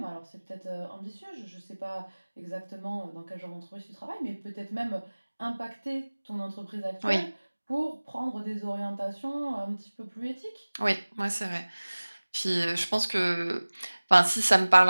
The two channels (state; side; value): inverted; both; correlation -1.00